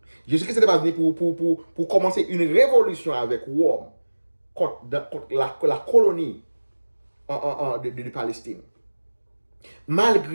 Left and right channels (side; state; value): both; inverted; correlation -1.00